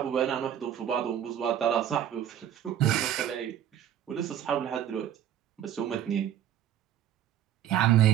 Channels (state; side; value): quieter; left; 10.4 dB